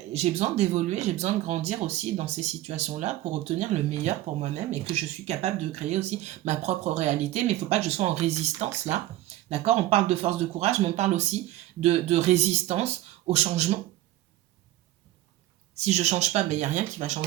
j'ai besoin d'évoluer, j'ai besoin de grandir aussi dans ces situations-là pour obtenir le meilleur pour moi-même et que je suis capable de créer aussi ma propre réalité, mais il ne faut pas que je sois en résistance là, d'accord? On parle de force de courage, mais on parle aussi de résistance au changement. Si je ne change pas, il n'y a rien qui va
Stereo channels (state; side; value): quieter; left; 15.2 dB